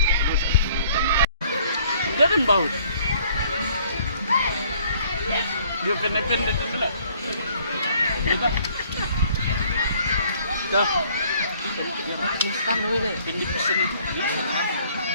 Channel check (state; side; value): inverted; both; correlation -0.60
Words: Jangan bau. Dia pendek-pendek itu lah. Kita. Dah. Instan dulu deh. Pendek sini.